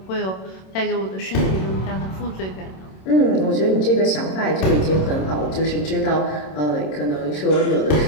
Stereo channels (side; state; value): right; late; 27 ms